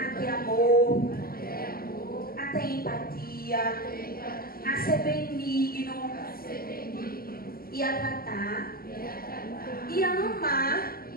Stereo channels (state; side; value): late; right; 0.43 ms